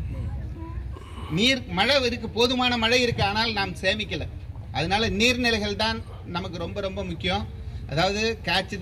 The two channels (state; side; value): identical; both; correlation 1.00